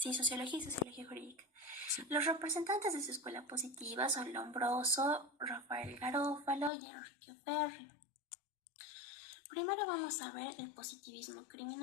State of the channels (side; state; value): right; drops out; at 6.7 s